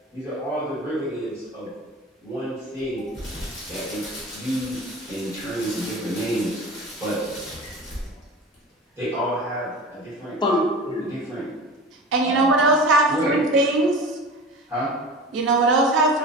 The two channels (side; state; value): both; normal; correlation 0.34